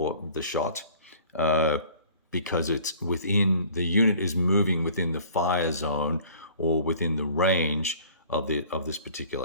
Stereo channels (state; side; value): inverted; both; correlation -0.50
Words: the shot because it's within, the unit is moving within the fire zone or within the range of this